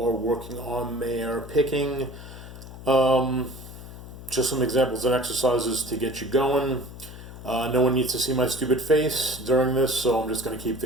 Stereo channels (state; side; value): noise; left; hum, 14 dB below the sound